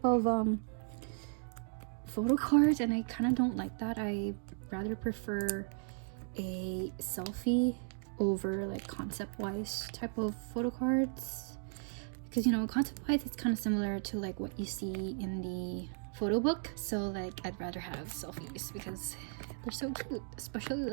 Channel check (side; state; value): left; silent; 54 dB below the other